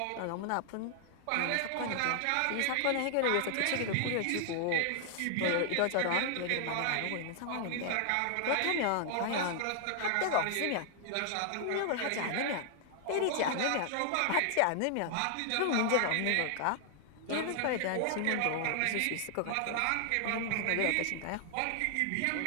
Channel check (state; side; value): different; both; correlation 0.00